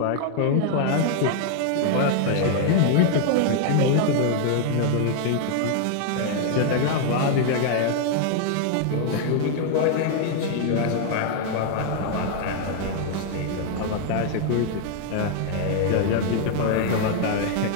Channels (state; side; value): different; both; correlation 0.00